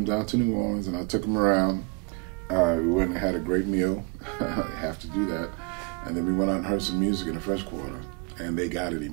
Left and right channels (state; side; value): quieter; left; 29.4 dB